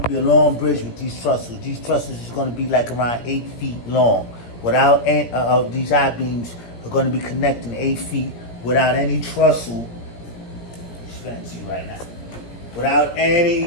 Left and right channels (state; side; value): late; right; 17 ms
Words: to be a long bridge with these trestles. These trestles is going to be like around 8 feet long. Without these I-beams are going to be connecting 8 feet without any trestle. It's fancy right now. Without